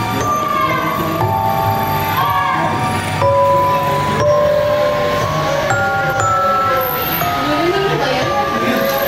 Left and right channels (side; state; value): both; identical; correlation 1.00